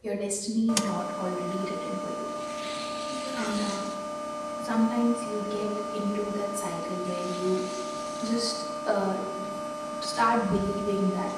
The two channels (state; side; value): identical; both; correlation 1.00